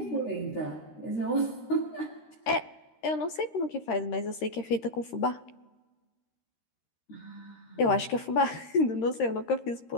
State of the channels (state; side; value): late; right; 13 ms